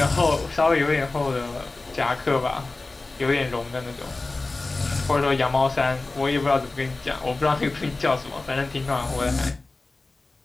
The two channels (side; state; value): right; quieter; 3.3 dB